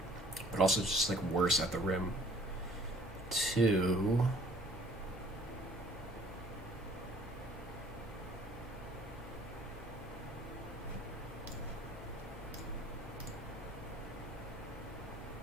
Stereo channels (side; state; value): both; normal; correlation 0.55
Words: also just like worse at the rim. 2.